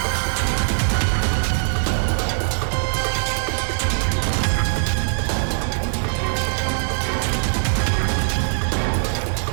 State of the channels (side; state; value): left; silent; digital silence